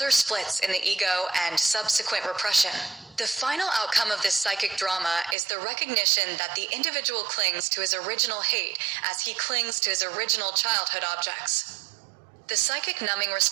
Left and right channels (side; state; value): left; drops out; at 5.4 s